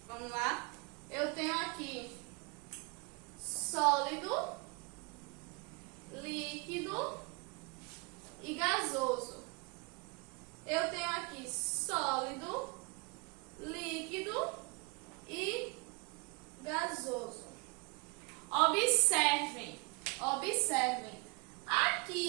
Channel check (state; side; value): quieter; left; 29.1 dB